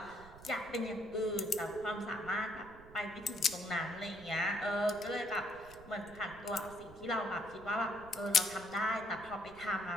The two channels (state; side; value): noise; right; rumble, 19 dB below the sound